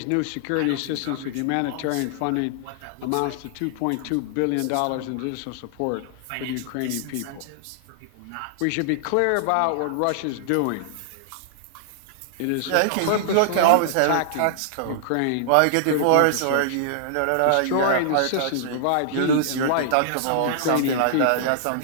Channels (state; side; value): different; both; correlation -0.01